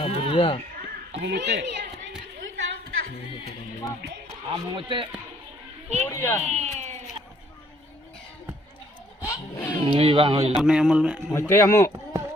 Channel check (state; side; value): normal; both; correlation 0.64